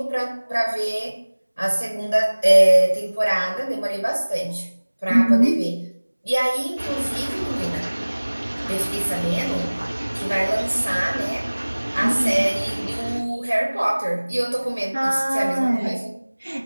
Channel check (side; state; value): both; inverted; correlation -1.00